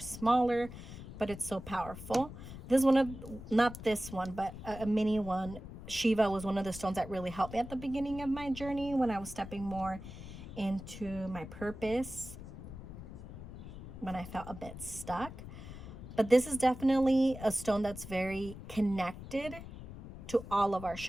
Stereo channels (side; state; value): left; noise; rumble, 12 dB below the sound